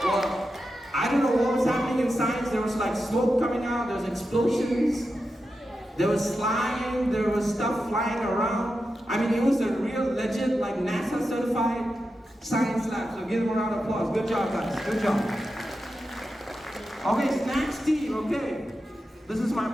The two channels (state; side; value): normal; both; correlation 0.89